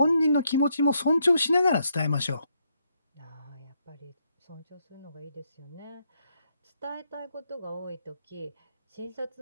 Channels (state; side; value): inverted; both; correlation -0.76